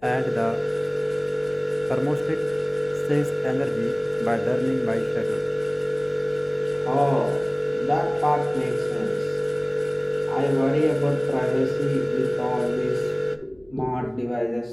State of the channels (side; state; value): left; noise; hum, 30 dB below the sound